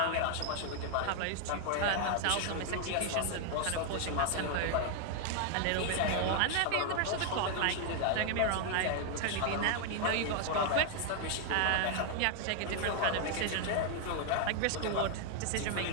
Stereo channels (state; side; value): different; both; correlation 0.00